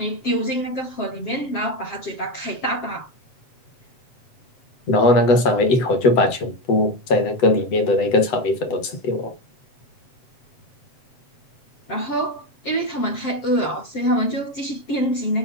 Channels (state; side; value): late; right; 8.0 ms